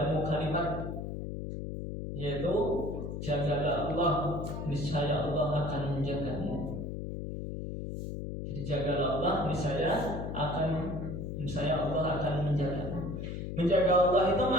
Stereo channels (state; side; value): noise; left; hum, 5 dB below the sound